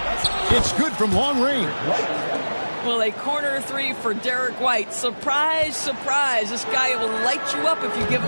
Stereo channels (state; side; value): inverted; both; correlation -1.00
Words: It's good from long range. Well, a corner three for Derek White. Surprise, surprise. This guy will light you up if you give